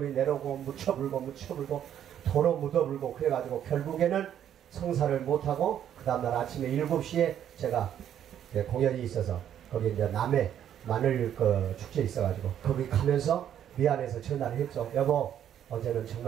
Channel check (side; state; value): left; quieter; 10.0 dB